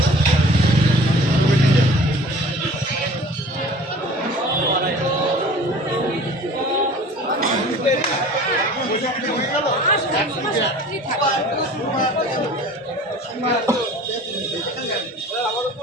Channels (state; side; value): normal; both; correlation 0.45